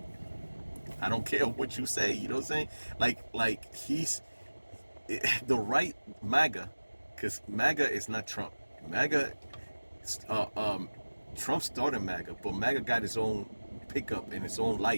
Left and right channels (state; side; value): inverted; both; correlation -1.00